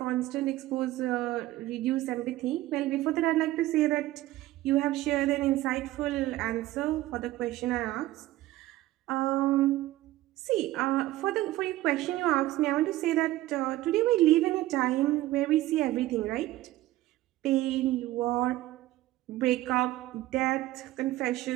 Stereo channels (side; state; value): left; quieter; 16.2 dB